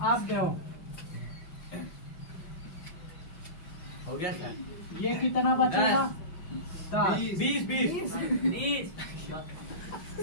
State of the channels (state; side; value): late; right; 5.5 ms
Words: अब दो, हो गया सर। ये कितना बचेगा 10 20